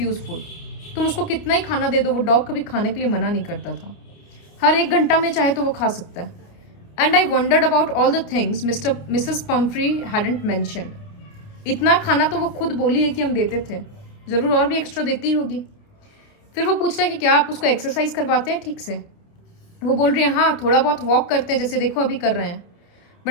food. तुम उसको कितना ही खाना दे दो, वो डॉग कभी खाने के लिए मना नहीं करता था। हर 1 घंटा में चाहे तो वो खा सकता है। And I wandered about all the things Mrs Pomfrey hadn't mention. इतना खाना तो वो खुद बोली है कि हम देते थे, जरूर और भी एक्स्ट्रा देती होगी। फिर वो पूछ रहा है कि क्या आप उसको एक्सरसाइज करवाते हैं ठीक से। वो बोल रही है हाँ, थोड़ा बहुत वॉक करते हैं, जैसे देखो अभी कर रहे हैं।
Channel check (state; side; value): late; right; 29 ms